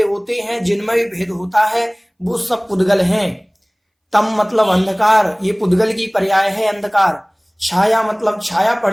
होते हैं, जिनमें भी भेद होता है, वो सब पुद्गल हैं। तम मतलब अंधकार, ये पुद्गल की पर्याय है, अंधकार। छाया मतलब छाया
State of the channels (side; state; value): both; identical; correlation 1.00